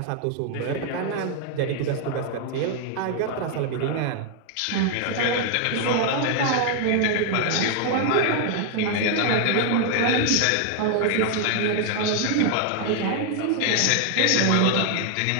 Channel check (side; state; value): both; different; correlation 0.00